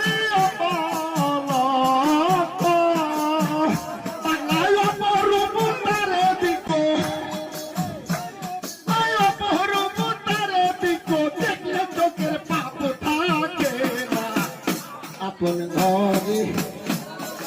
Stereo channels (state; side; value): identical; both; correlation 1.00